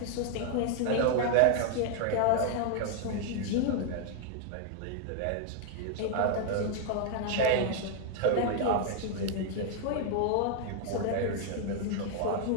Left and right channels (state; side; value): different; both; correlation 0.00